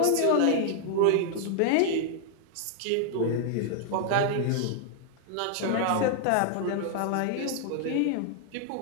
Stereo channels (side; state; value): both; different; correlation -0.01